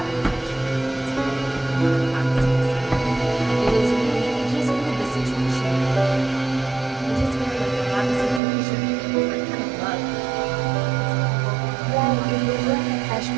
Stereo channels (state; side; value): drops out; left; at 8.4 s